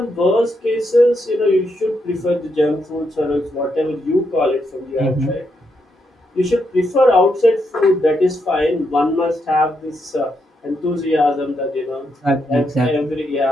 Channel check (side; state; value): both; normal; correlation 0.80